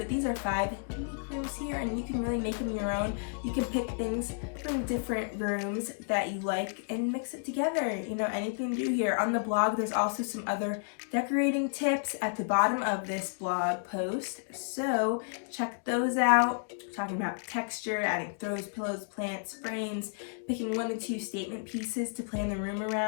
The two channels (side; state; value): right; silent; digital silence